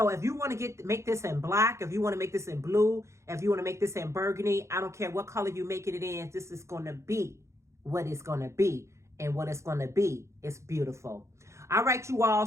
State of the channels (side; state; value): left; late; 0.14 ms